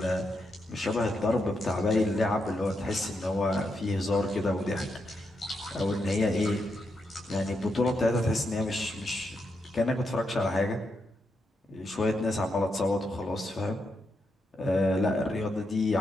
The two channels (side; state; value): both; normal; correlation 0.83